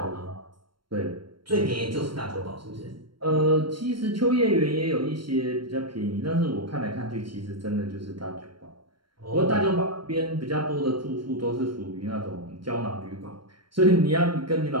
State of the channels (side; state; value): left; late; 0.73 ms